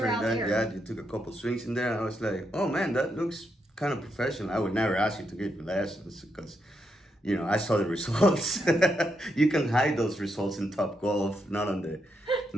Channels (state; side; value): normal; both; correlation 0.81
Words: that, there. you took a couple swings in there, and I was like, oh man, that looks kind of professional. I would never ask you to give me lessons because... You know, I saw the results. You can hide those results in Top Golf, not